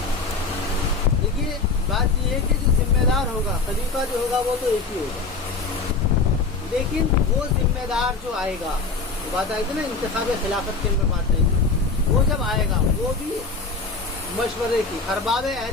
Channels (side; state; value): right; quieter; 4.2 dB